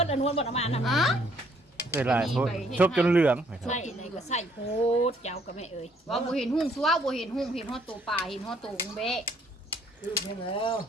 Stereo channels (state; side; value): normal; both; correlation 0.65